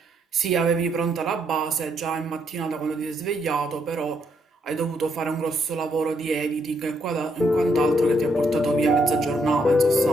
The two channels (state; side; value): normal; both; correlation 0.74